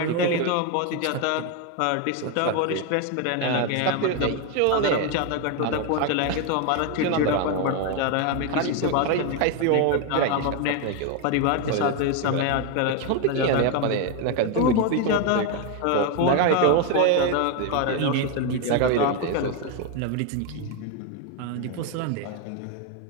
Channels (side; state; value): both; different; correlation 0.01